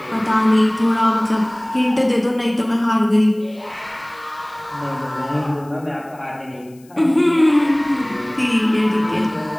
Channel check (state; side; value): noise; left; hiss, 29 dB below the sound